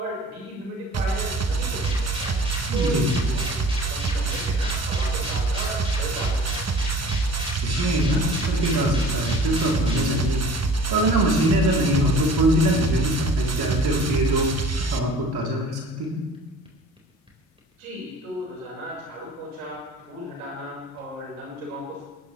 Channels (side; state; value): both; normal; correlation 0.46